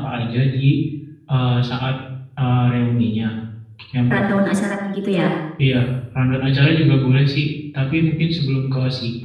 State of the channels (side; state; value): both; identical; correlation 1.00